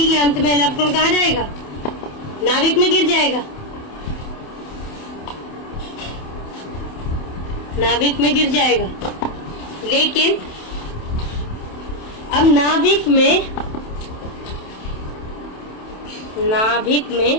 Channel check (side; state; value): right; late; 27 ms